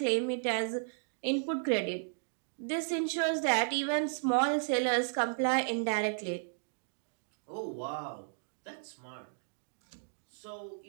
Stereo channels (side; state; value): left; silent; digital silence